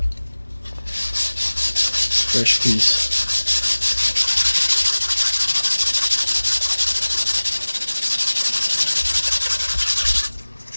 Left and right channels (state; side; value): inverted; both; correlation -1.00